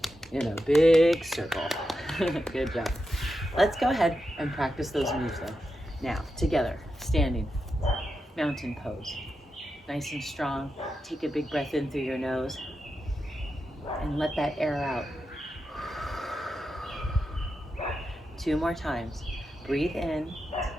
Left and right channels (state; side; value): normal; both; correlation 0.88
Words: in a big circle. Good job. Let's go ahead and practice those moves though. Now, together, standing, mountain pose. Nice and strong. Take a big breath in through your nose and let that air out. 2 more times. Breathe in.